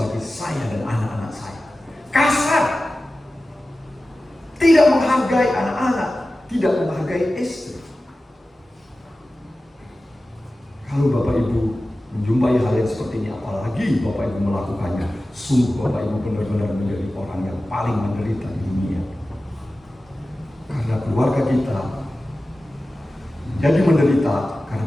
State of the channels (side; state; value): both; normal; correlation 0.95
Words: saya dan anak-anak saya. Kasar, tidak menghargai anak-anak, tidak menghargai istri. Kalau Bapak Ibu menjumpai hal yang seperti ini, apalagi Bapak Ibu melakukannya, sungguh Bapak Ibu benar-benar menjadi orang yang paling menderita di dunia. Karena keluarga kita menjadi menderita karena